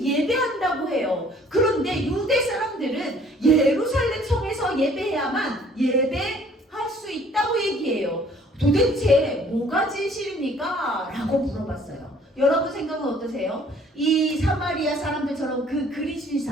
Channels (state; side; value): normal; both; correlation 0.57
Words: 예배한다고 해요. 그런데 유대 사람들은 예루살렘 성에서 예배해야만 예배할 수 있다고 얘기해요. 도대체 뭐가 진실입니까? 라고 물어봤어요. 여러분 생각은 어떠세요? 이 사마리아 사람들처럼 그